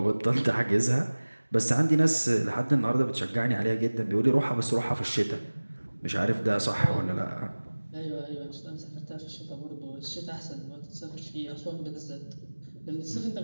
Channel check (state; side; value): inverted; both; correlation -1.00